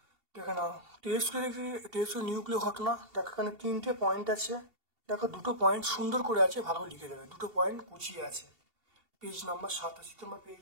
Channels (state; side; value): late; left; 2.7 ms